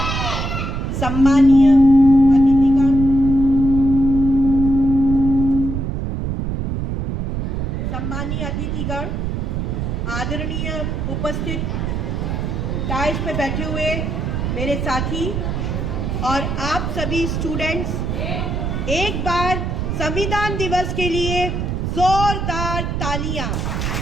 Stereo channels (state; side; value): noise; right; rumble, 2 dB below the sound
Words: सम्मानीय अतिथिगण, आदरणीय उपस्थित डाइस पे बैठे हुए मेरे साथी और आप सभी स्टूडेंट्स, एक बार संविधान दिवस के लिए जोरदार तालियां।